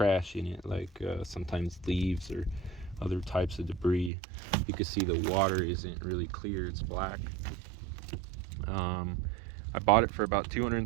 in it, like sometimes leaves or other types of debris. You can see the water isn't really clear, it's black. I bought it for about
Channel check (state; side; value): drops out; left; at 4.1 s